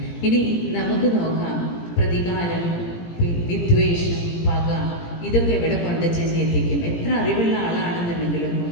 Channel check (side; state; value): right; late; 17 ms